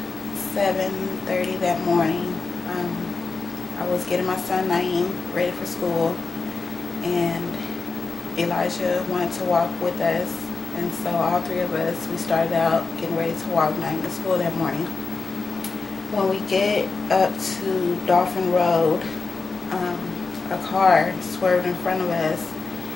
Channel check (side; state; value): right; quieter; 4.3 dB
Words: 7:30 that morning, I was getting my son Naeem ready for school, and Elijah wanted to walk with us, and so all three of us, we started out getting ready to walk Naeem to school that morning. When we get up to Dolphin Road, a car swerved in front of us,